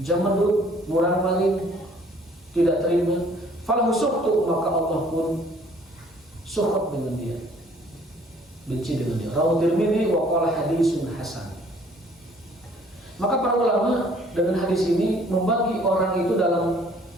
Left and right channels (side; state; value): both; normal; correlation 0.57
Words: jamadud, murang maling, tidak terima, falahu sukhtu, maka Allah pun sukhut dengan dia, benci dengan dia. Rawahu Tirmidzi wa qala hadisun hasan. Maka para ulama dengan hadis ini membagi orang itu dalam